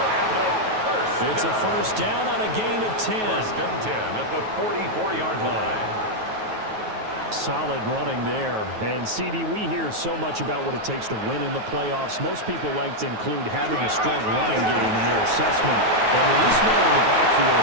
44. It's a first down on a gain of 10. 1st and 10 at the 44-yard line. Solid running there. And, CD, we hear so much about what it takes to win in the playoffs. Most people like to include having a strong running game in their assessment. And with this man in the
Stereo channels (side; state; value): left; late; 9.3 ms